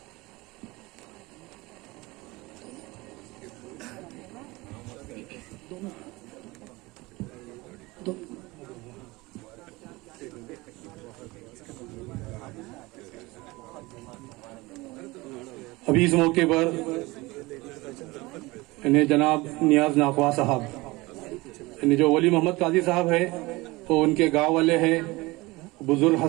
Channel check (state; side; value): quieter; left; 22.2 dB